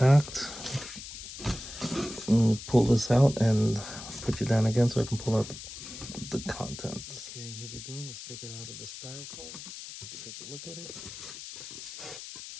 Pull this out and put you down again so I can pull out the contents. Okay, here we go. Let's take it out of the styrofoam. Take a look at it.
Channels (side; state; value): left; noise; hiss, 11 dB below the sound